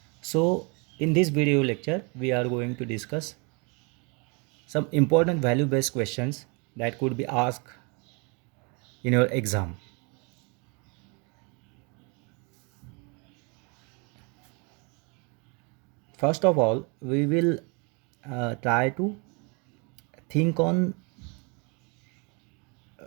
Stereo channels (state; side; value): quieter; left; 32.6 dB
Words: So in this video lecture we are going to discuss some important value based questions that could be asked in your exam. First of all, we will try to think on